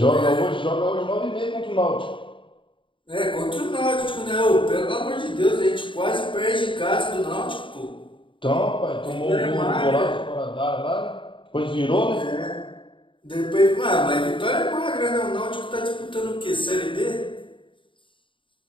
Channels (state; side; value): late; right; 0.24 ms